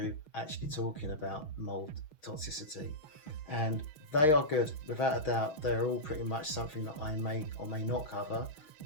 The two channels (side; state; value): right; late; 6.4 ms